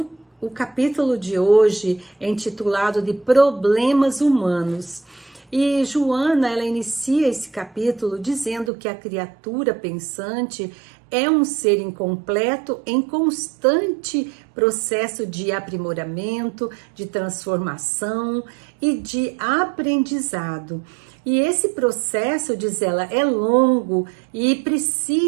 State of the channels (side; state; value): left; drops out; at 8.7 s